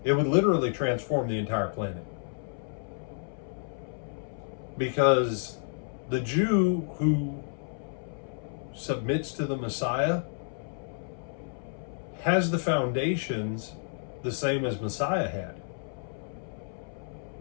it would literally transform the entire planet. Because the Jew who submits to the Messiah has the foundations the same as Messiah had.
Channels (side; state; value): right; silent; 57 dB below the other